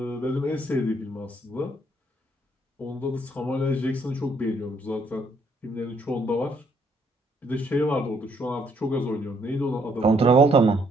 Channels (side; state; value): both; normal; correlation 0.69